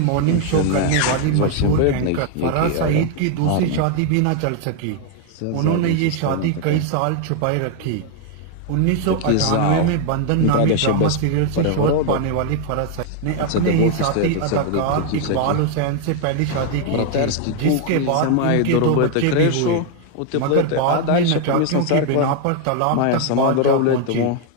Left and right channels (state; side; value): different; both; correlation 0.00